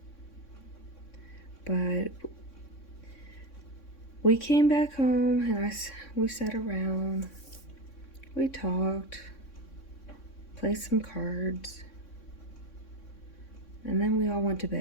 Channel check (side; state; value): right; late; 3.6 ms